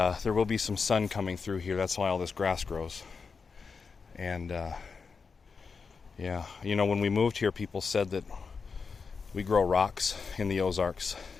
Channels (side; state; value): right; quieter; 5.1 dB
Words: will be some sun coming through here. That's why all this grass grows. And when we moved here, people said that we grow rocks in the Ozarks,